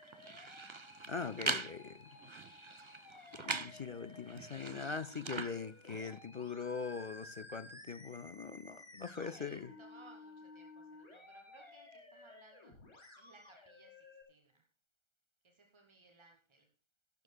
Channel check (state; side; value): late; left; 1.3 ms